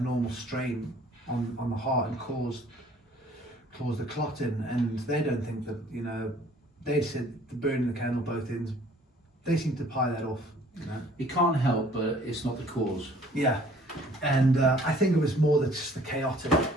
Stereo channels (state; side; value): normal; both; correlation 0.56